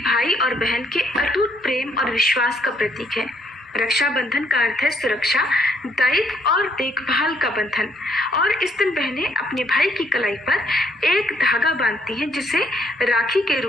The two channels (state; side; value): normal; both; correlation 0.69